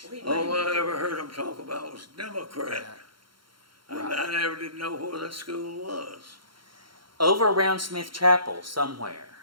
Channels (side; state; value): left; late; 0.73 ms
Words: We All made- I ever heard them talk about was Democrat. I never did know where that school was. Over around Smith Chapel somewhere.